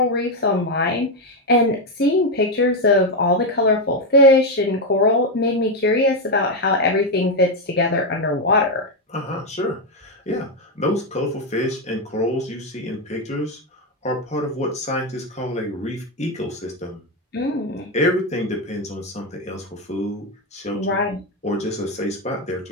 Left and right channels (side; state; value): both; normal; correlation 0.06